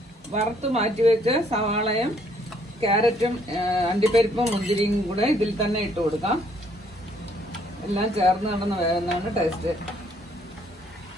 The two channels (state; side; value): normal; both; correlation 0.66